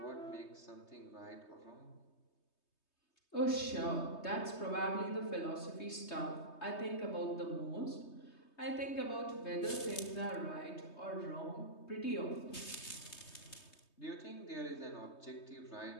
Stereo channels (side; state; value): right; late; 3.2 ms